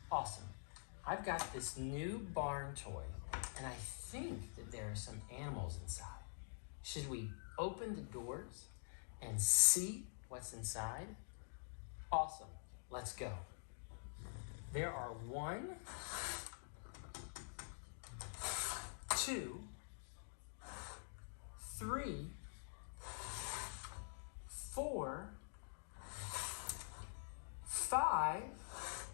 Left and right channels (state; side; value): silent; right; digital silence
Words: Awesome. I've got this new barn toy, and I think that there are some animals inside. Should we open the doors and see what's inside? Awesome. Let's go. There are 1, 2, 3, 4, 5,